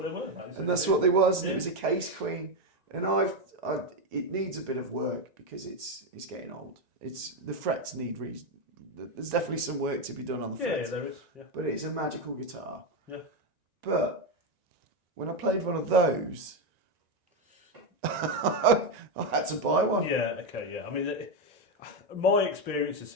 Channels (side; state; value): left; late; 1.9 ms